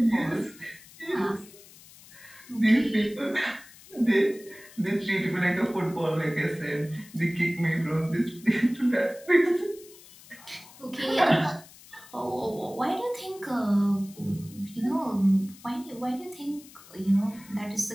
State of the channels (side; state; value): left; noise; hiss, 21 dB below the sound